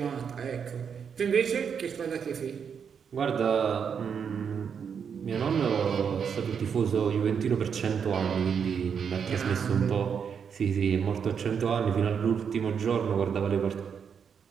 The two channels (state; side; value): quieter; left; 7.0 dB